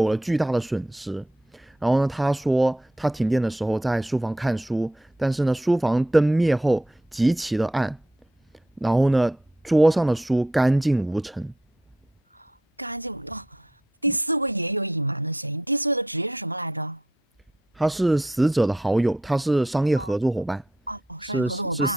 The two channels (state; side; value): normal; both; correlation 0.79